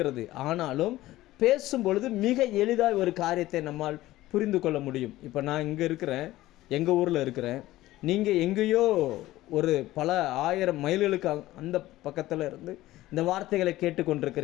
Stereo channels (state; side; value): quieter; right; 16.3 dB